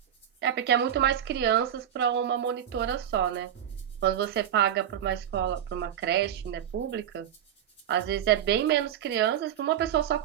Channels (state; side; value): quieter; left; 10.1 dB